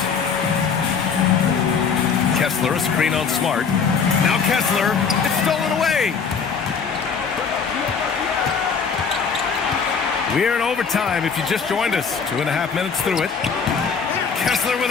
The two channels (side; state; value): right; quieter; 5.9 dB